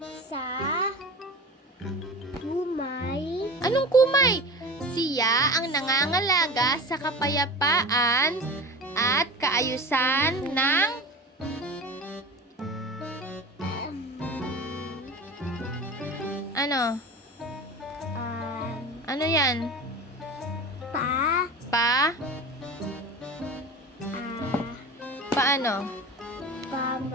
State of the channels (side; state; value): both; normal; correlation 0.32